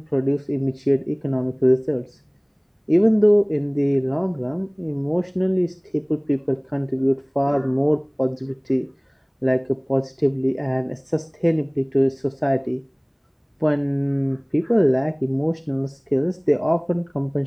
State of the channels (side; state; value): both; identical; correlation 1.00